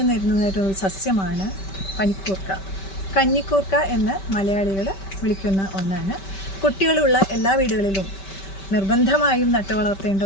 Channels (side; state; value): right; late; 5.2 ms